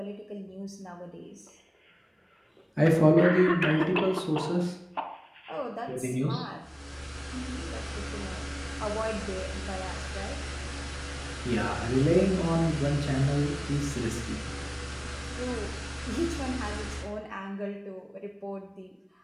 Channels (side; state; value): both; identical; correlation 1.00